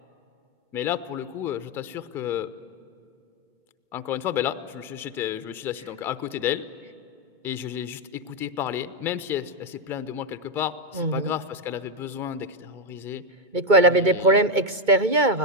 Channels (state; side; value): late; left; 2.2 ms